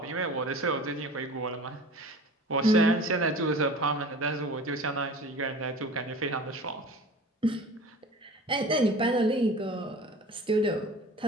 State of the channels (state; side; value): normal; both; correlation 0.41